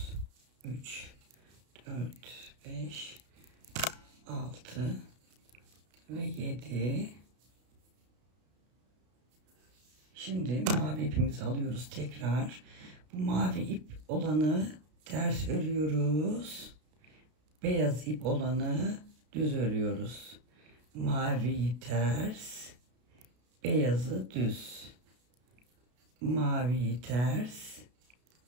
3, 4, 5, 6 ve 7. Şimdi mavi ipimizi alıyoruz tekrar. Bu mavi ip olanı ters örüyoruz. Beyaz ip olanı düz örüyoruz. Maviyi ters, beyazı düz. Maviyi ters,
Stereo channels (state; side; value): late; left; 33 ms